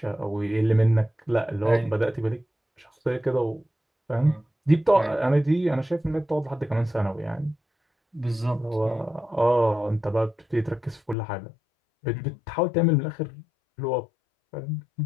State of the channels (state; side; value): drops out; right; at 11.2 s